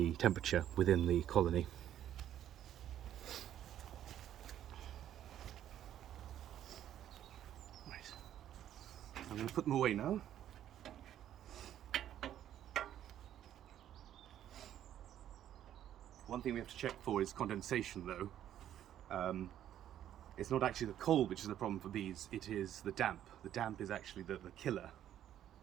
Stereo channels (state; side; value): quieter; left; 11.2 dB